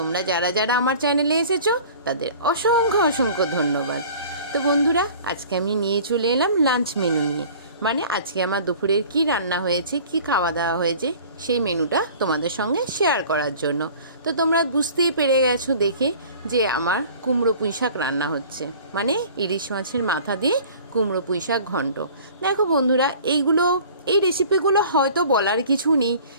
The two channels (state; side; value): inverted; both; correlation -0.46